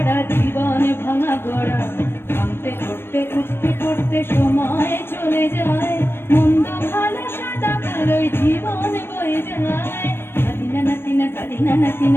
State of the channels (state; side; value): late; right; 0.11 ms